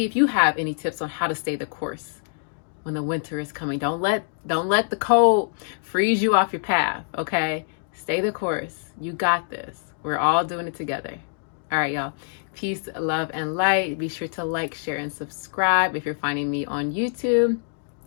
if you have any tips on how to stay the course when the winter is coming. Don't let the cold freeze you off your path, okay? Stay the course. You got this. We're all doing it together. All right, y'all. Peace, love, and light. Be sure to like, share, and subscribe if you're finding me on YouTube.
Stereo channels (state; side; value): silent; right; digital silence